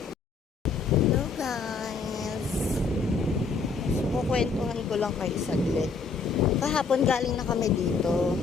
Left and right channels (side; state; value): right; quieter; 4.7 dB